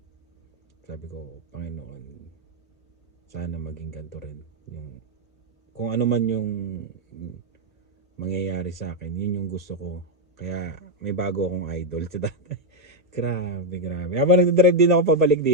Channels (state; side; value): normal; both; correlation 0.02